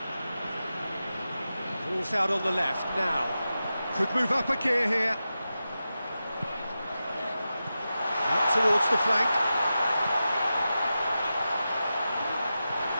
Ball's out on the left now. Could move up a gear here. Out towards the flank.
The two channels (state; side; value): inverted; both; correlation -0.92